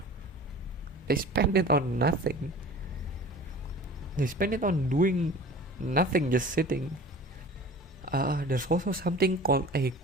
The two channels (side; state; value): both; normal; correlation 0.41